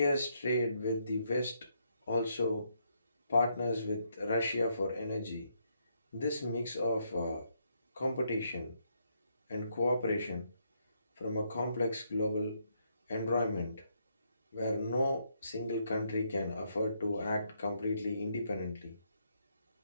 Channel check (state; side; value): inverted; both; correlation -0.75